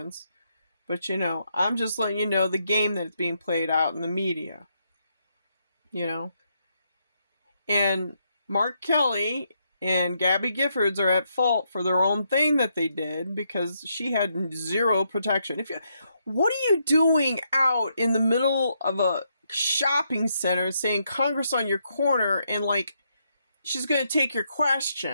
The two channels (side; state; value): both; inverted; correlation -0.78